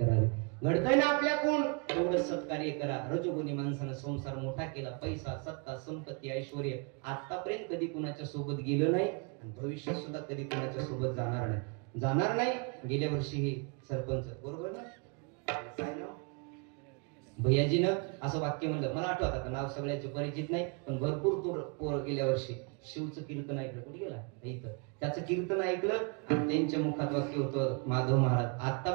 घडतंय ना आपल्याकडून तेवढं सत्कार्य करा. रजोगुणी माणसानं संसार मोठा केला, पैसा, सत्ता, संपत्ती, ऐश्वर्य आतापर्यंत कधी कुणाच्या सोबत गेलं नाही आणि भविष्यात सुद्धा कधी कुणाच्या सोबत जाणार नाही. गेल्या वर्षी हे सरपंच, बरोबर ना, काय नाव, भैयाजीनं असं वाक्य म्हणलं, मला आठवत आता नाव सगळ्याचे परिचित नाही, पण भरपूर पोर गेल्या वर्षी शिवचं कीर्तन ऐकलं. कुठे गेला? इथं. त्याचं कीर्तन ऐकलं आणि त्यांच्या मुखात वाक्य होतं, माधव महाराज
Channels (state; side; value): quieter; left; 33.9 dB